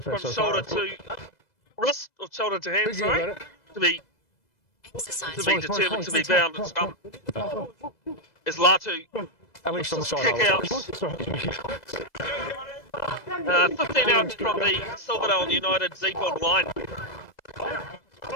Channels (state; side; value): late; right; 2.0 ms